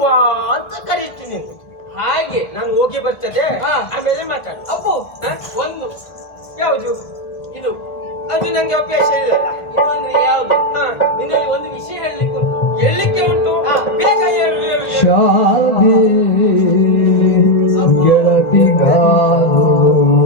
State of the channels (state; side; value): late; right; 1.5 ms